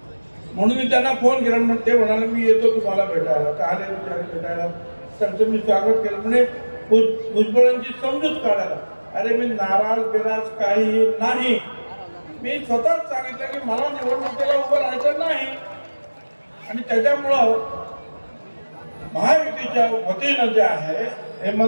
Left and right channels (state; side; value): inverted; both; correlation -1.00